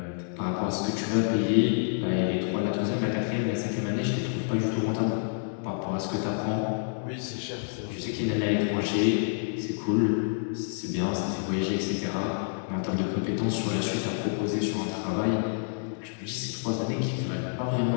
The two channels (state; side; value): silent; right; digital silence